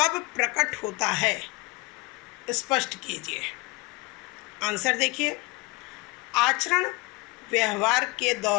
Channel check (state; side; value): quieter; right; 24.1 dB